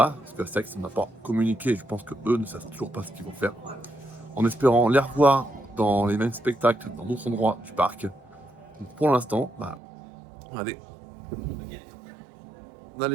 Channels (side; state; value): left; drops out; at 9.8 s